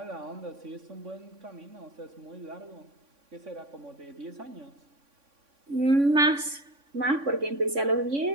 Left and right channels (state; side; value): late; left; 3.6 ms